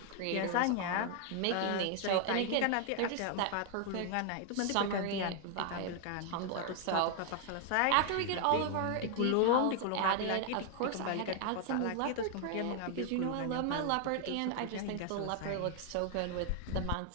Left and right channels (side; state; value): both; different; correlation 0.00